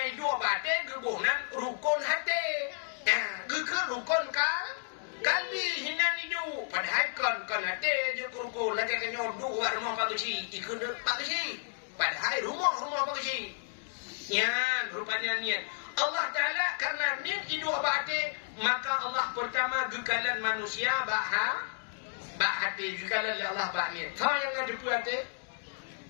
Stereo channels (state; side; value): silent; right; digital silence